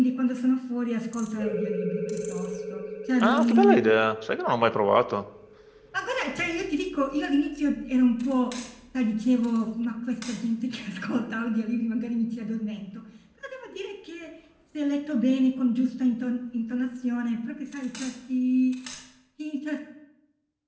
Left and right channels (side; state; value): both; identical; correlation 1.00